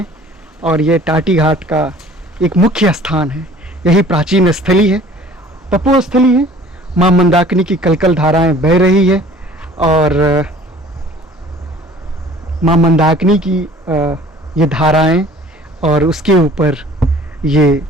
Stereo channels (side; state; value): both; normal; correlation 0.50